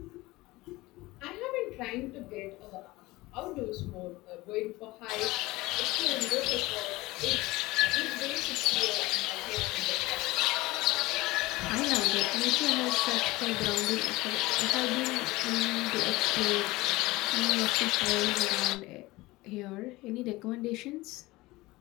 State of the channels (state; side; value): quieter; right; 20.2 dB